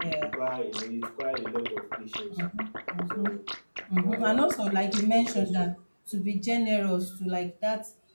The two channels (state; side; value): inverted; both; correlation -1.00